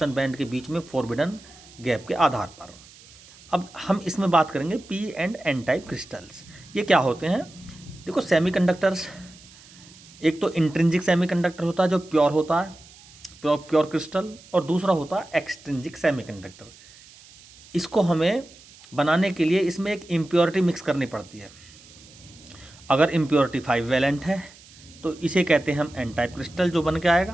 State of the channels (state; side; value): noise; right; hiss, 23 dB below the sound